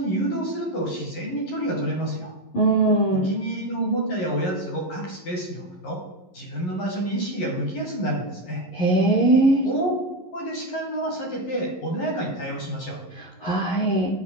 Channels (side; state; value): right; late; 11 ms